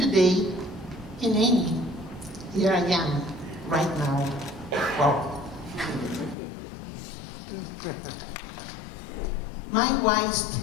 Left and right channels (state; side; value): drops out; right; at 6.4 s